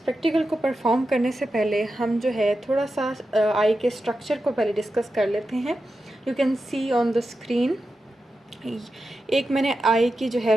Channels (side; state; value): both; normal; correlation 0.90